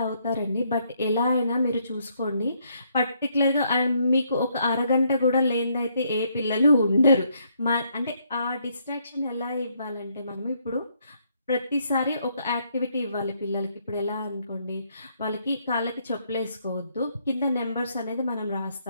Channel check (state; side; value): inverted; both; correlation -0.72